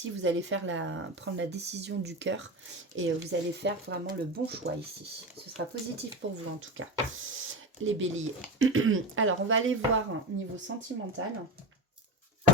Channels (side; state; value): both; normal; correlation 0.22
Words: vous allez prendre la décision du cœur. Et vous allez faire vraiment le bon choix ici. Ce sera positif pour vous en tout cas, les béliers. Alors, on va aller voir niveau sentimental.